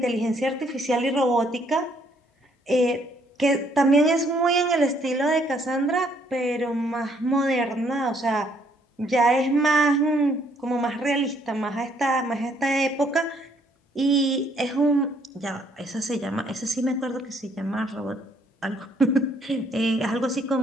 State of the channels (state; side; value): normal; both; correlation 0.67